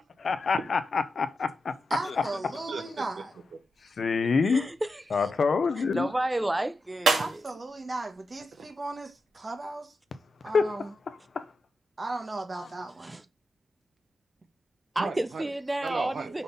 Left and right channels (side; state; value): both; normal; correlation 0.88